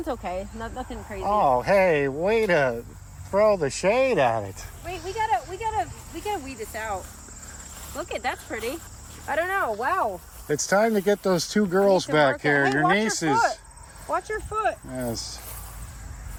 okay. Nothing crazy. Oh, hey, way to throw the shade at it. Wait, we gotta weed this out. Look at that's pretty. I don't know. Wow. It's time to get those two girls back here. Hey, Your nieces. Watch your foot. Yes.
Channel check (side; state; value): both; identical; correlation 1.00